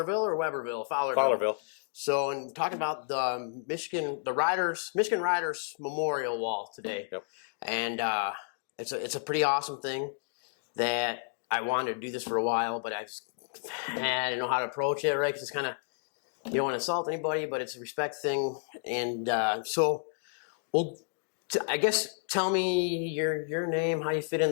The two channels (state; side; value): silent; right; 57 dB below the other